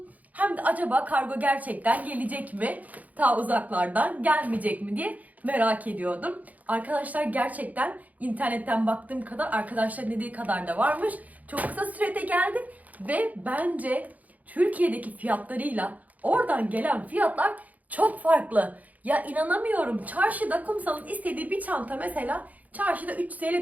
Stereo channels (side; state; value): left; late; 0.077 ms